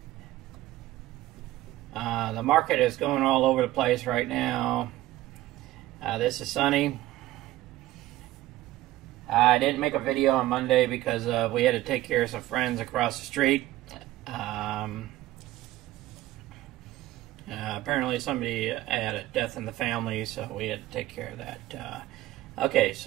The market is going all over the place right now. This is sunny. I didn't make a video on Monday because we had to take care of some friends across the street. Apparently somebody had a death in the family, so we had to take care of that. Okay,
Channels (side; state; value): left; quieter; 15.9 dB